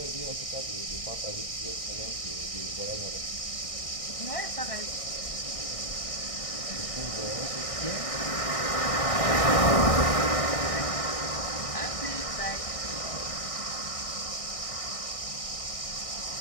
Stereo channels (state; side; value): late; right; 1.6 ms